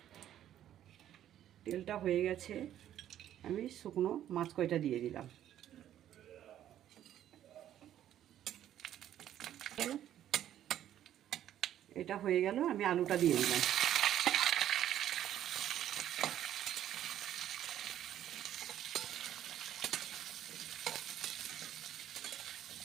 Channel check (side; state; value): left; quieter; 11.4 dB